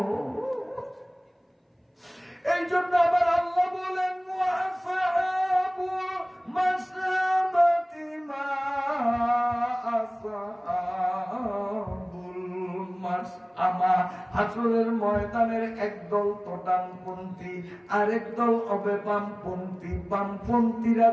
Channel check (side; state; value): both; identical; correlation 1.00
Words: এই জন্য আবার আল্লাহ বলেন ওয়াসাহাবুল মাশআমাতি মা আসহাবুল মাশআমা। হাসরের ময়দানের একদল তো ডানপন্থী, আরেক দল হবে বামপন্থী। বামপন্থীরা